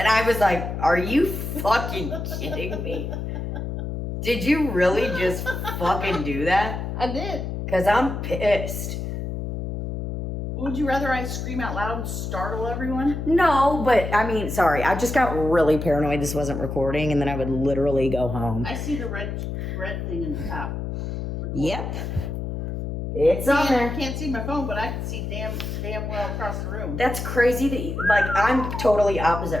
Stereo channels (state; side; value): noise; left; hum, 5 dB below the sound